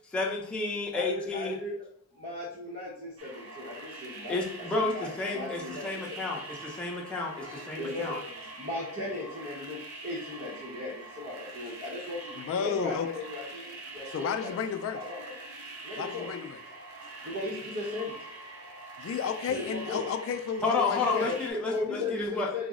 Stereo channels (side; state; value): right; quieter; 3.2 dB